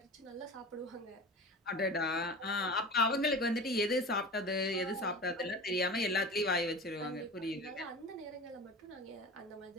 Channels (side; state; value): both; normal; correlation 0.33